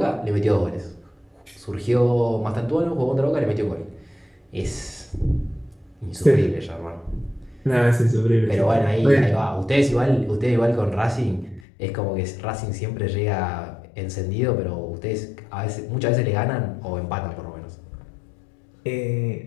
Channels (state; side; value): drops out; right; at 11.7 s